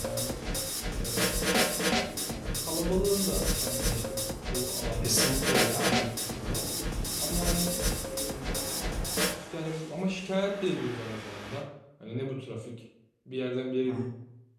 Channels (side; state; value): both; identical; correlation 1.00